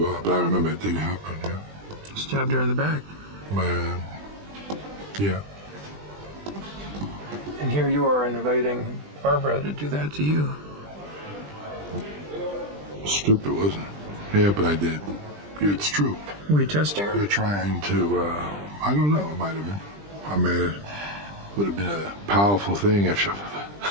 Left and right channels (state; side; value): late; left; 20 ms